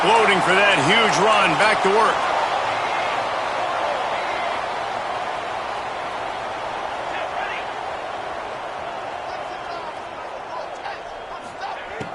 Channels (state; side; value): identical; both; correlation 1.00